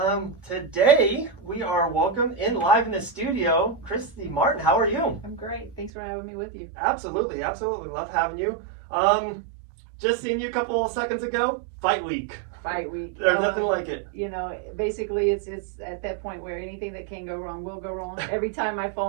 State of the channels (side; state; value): left; drops out; at 5.9 s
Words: Today we are welcome in live in the studio, Christy Martin. How are you? I'm great. Thanks for having me with you. Absolutely. Love having you. Just seen you a couple of seconds ago. Fight week. Fight week. There's nothing like it. You know, basically it's at that point where anything that can go wrong will go wrong. Every time my